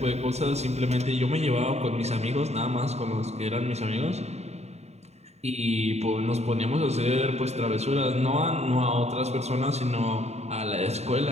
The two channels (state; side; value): late; left; 0.32 ms